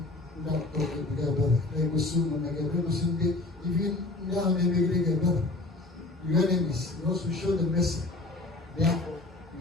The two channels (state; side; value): quieter; right; 3.0 dB